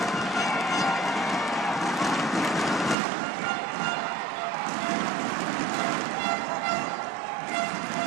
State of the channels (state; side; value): drops out; left; at 3.0 s